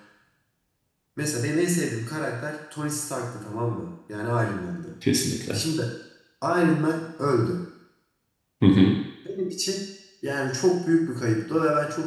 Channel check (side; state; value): both; identical; correlation 1.00